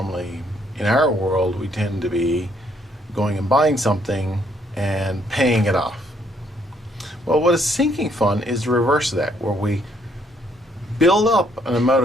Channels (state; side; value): normal; both; correlation 0.69